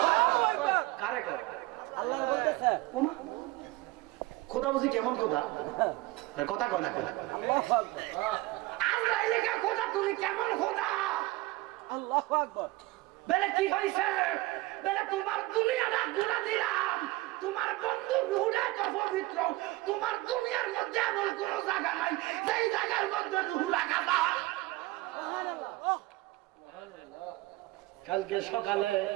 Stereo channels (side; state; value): left; quieter; 19.6 dB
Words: কারে কয়? আল্লাহ বলতেছে, ওমা খোদা বুঝি কেমন খোদা? কথা কয় না, আজরাইলে কে খোদা তুমি কেমন খোদা? আল্লাহু আকবার। বলে কি হইছে? বলে তোমার দুনিয়াটা ঘুরা দিলাম, তোমার বন্ধু রূহটা তো পবিত্র, তোমার দুনিয়ার মধ্যে এমন কোন জায়গা নাই যেই জায়গার মধ্যে রূহ রাখা যায়। কালকে সকালে